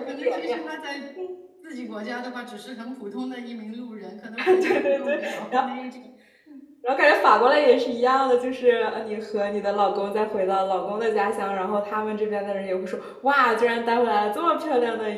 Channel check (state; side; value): identical; both; correlation 1.00